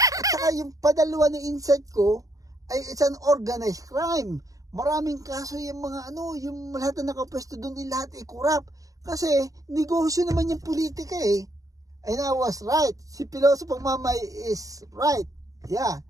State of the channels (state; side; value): late; left; 0.17 ms